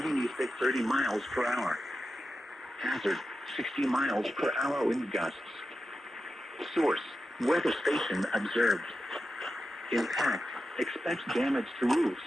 east at 30 miles per hour. Hazard, 60 miles per hour wind gusts. Source, weather station observed. Impact, expect damage to roofs,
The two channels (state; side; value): normal; both; correlation 0.91